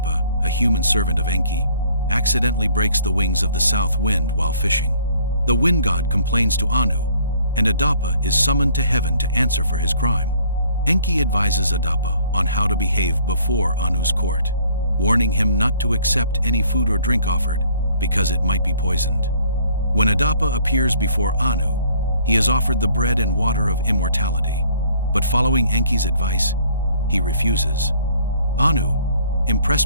a human servant of Enki, accidentally breaks the wings of the south wind while fishing. The wind god complains to Anu, and Adapa is summoned to heaven to answer for his crime. Enki advises Adapa on how to behave before Anu's court, warning him not to accept any food or drink offered because it might be poisoned. When Adapa appears before Anu, he is offered the bread and water of immortality, but following Enki's advice, he refuses. Anu,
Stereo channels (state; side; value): inverted; both; correlation -0.59